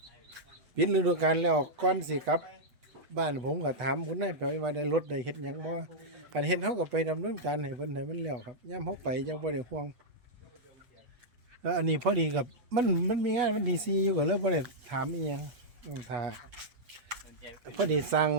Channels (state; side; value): late; left; 8.1 ms